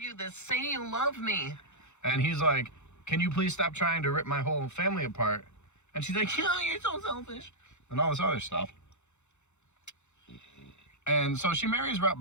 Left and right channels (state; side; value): late; right; 0.83 ms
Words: this. Say you love me. And he's like, can you please stop trying to rip my whole family apart? And she's like, oh, you're so selfish. And all this other stuff. And so she marries Rhett